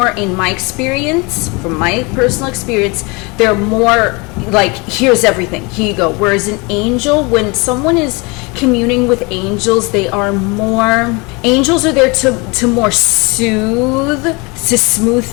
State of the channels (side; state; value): right; quieter; 27.9 dB